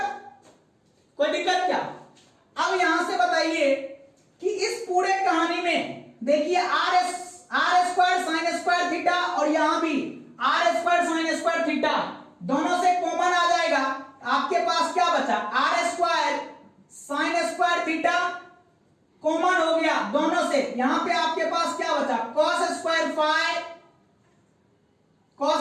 कोई दिक्कत क्या? अब यहां से बताइए कि इस पूरे कहानी में देखिए r square sine square theta और यहां भी r square sine square theta दोनों से कॉमन आ जाएगा। आपके पास क्या बचा? r square sine square theta common हो गया दोनों से। यहां पे आपके पास क्या बचा? cos square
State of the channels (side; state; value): both; identical; correlation 1.00